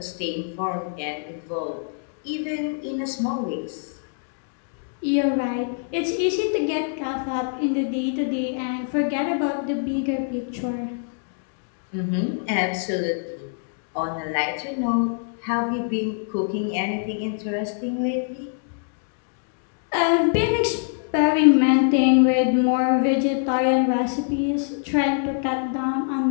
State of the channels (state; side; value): silent; right; 62 dB below the other